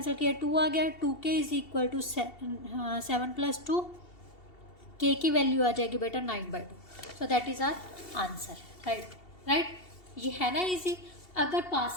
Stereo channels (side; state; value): right; late; 2.7 ms